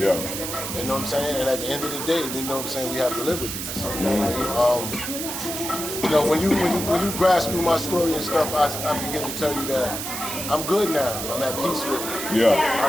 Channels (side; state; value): right; noise; hiss, 5 dB below the sound